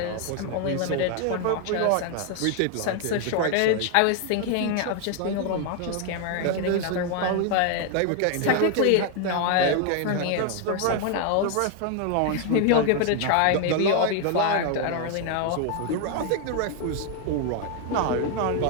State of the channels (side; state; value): both; different; correlation 0.00